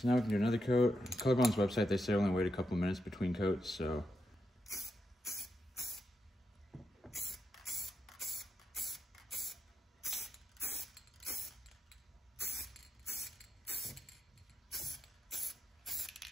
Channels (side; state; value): both; normal; correlation 0.85